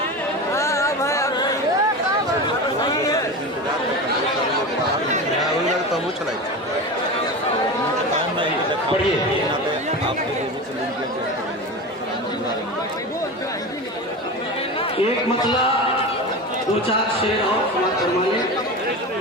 तो वो चलाई पढ़िए। एक मतला दो चार शेर और समाप्त करवाइए।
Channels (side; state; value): both; normal; correlation 0.26